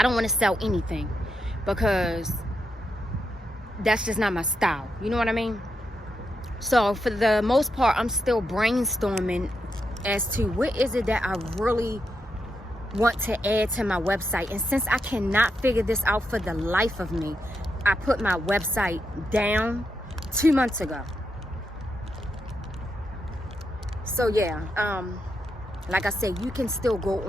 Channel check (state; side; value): normal; both; correlation 0.83